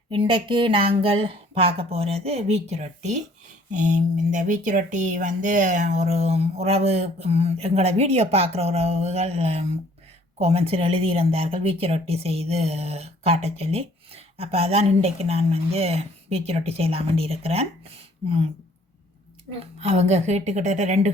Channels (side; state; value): both; normal; correlation 0.58